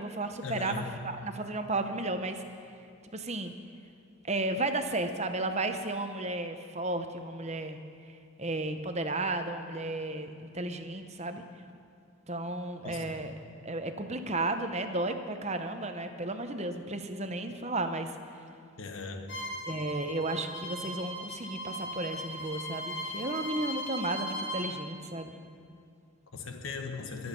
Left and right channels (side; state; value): both; normal; correlation 0.11